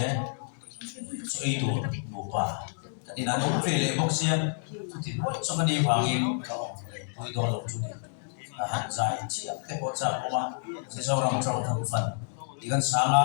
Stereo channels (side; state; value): right; silent; digital silence